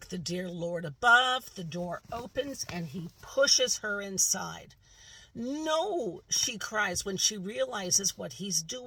the dear Lord above, the door opens and he pushes her inside. No, she cries when she realizes what he's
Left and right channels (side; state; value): both; identical; correlation 1.00